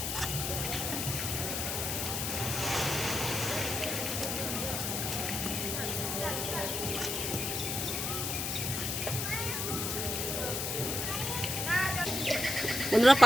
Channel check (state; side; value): noise; left; hiss, 1 dB below the sound